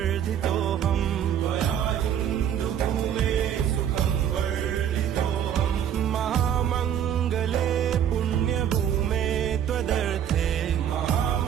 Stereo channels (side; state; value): left; quieter; 9.6 dB